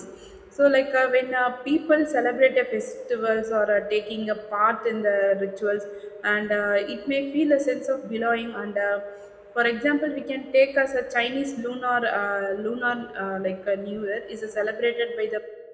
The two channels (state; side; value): identical; both; correlation 1.00